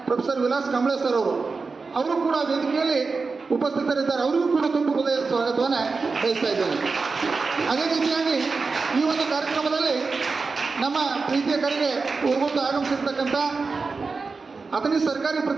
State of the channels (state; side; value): quieter; left; 4.3 dB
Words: ಪ್ರೊಫೆಸರ್ ವಿಲಾಸ್ ಕಾಂಬ್ಳೆ ಸರ್ ಅವರು ಕೂಡ ವೇದಿಕೆಯಲ್ಲಿ ಉಪಸ್ಥಿತರಿದ್ದಾರೆ. ಅವರಿಗೂ ಕೂಡ ತುಂಬ ಹೃದಯದ ಸ್ವಾಗತವನ್ನು ಬಯಸ್ತಾ ಇದ್ದೇನೆ. ಅದೇ ರೀತಿಯಾಗಿ ಈ ಒಂದು ಕಾರ್ಯಕ್ರಮದಲ್ಲಿ ನಮ್ಮ ಪ್ರೀತಿಯ ಕರೆಗೆ ಊರುಗುಂದು ಆಗಮಿಸಿರ್ತಕ್ಕಂಥ ಅಥಣಿ ಸರ್ಕಾರಿ